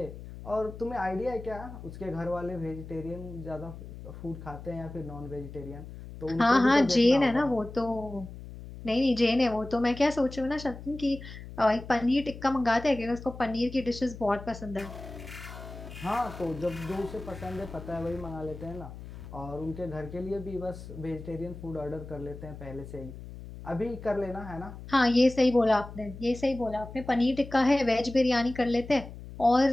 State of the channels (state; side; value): noise; left; hum, 13 dB below the sound